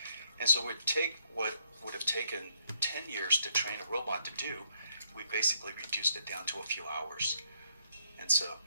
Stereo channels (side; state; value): both; inverted; correlation -0.71